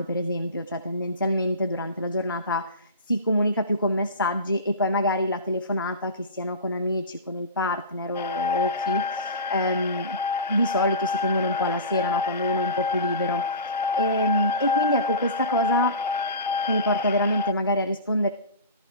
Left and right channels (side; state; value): both; inverted; correlation -0.32